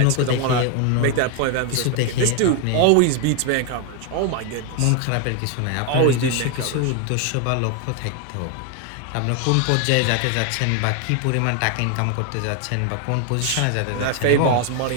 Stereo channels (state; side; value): different; both; correlation 0.01